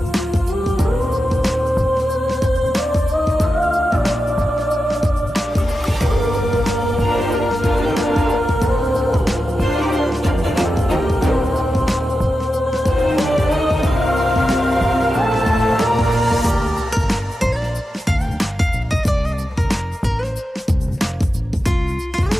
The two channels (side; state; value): both; normal; correlation 0.91